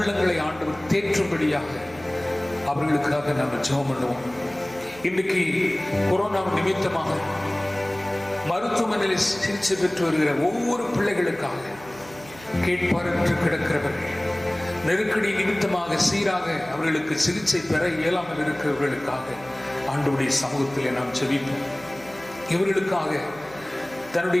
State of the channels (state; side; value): noise; right; hum, 20 dB below the sound